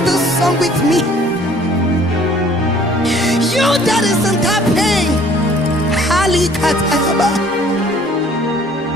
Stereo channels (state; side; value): normal; both; correlation 0.55